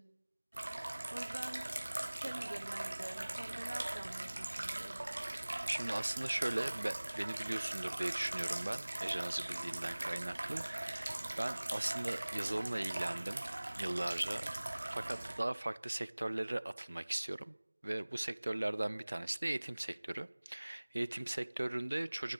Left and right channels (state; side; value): inverted; both; correlation -1.00